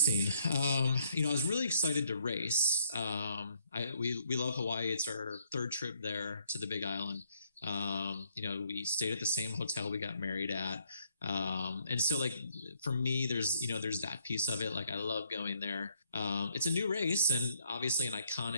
I was really excited to race. We love Hawaii. It's our third trip there to the Big Island. We stayed at the same hotel we got married at. And so like, for me, there's that piece of it. Like, I love going there. It's a new race and obviously an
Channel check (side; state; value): both; inverted; correlation -0.70